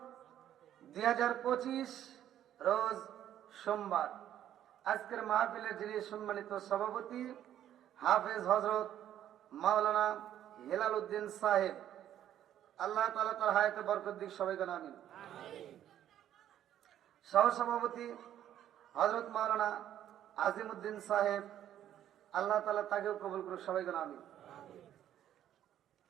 2025, রোজ সোমবার। আজকের মাহফিলের যিনি সম্মানিত সভাপতি হাফেজ হযরত মাওলানা হেলাল উদ্দিন সাহেব, আল্লাহ তাআলা তার হায়াতে বরকত দিক, সবাই বলেন আমিন। সহসভাপতি হযরত মাওলানা আজিমউদ্দিন সাহেব, আল্লাহ তাআলা তাকেও কবুল করুক, সবাই বলেন আমিন।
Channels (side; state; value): left; quieter; 11.2 dB